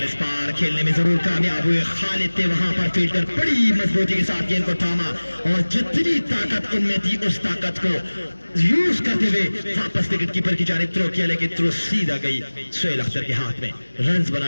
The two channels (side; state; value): both; inverted; correlation -1.00